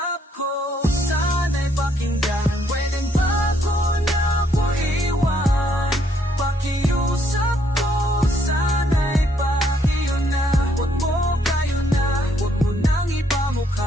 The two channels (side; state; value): both; normal; correlation 0.70